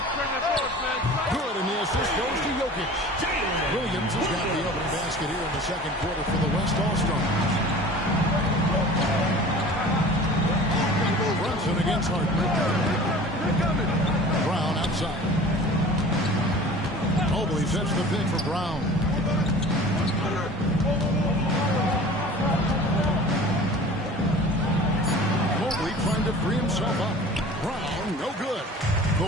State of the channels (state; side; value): normal; both; correlation 0.42